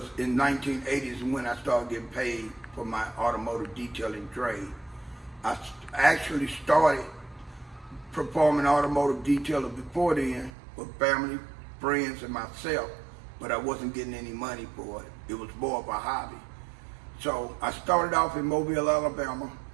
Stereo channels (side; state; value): left; drops out; at 10.5 s